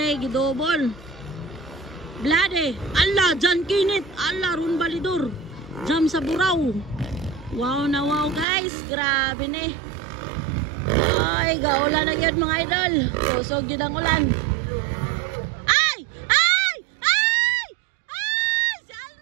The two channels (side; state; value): left; drops out; at 8.5 s